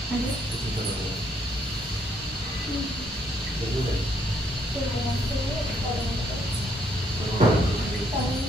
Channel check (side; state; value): both; normal; correlation 0.70